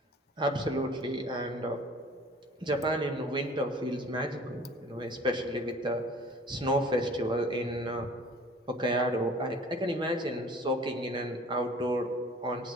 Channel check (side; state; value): both; normal; correlation 0.49